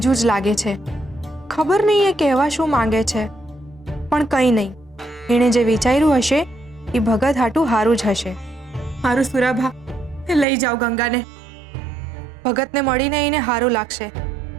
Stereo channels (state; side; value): drops out; left; at 10.5 s